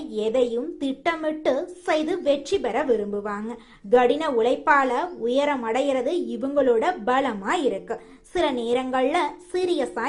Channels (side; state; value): both; identical; correlation 1.00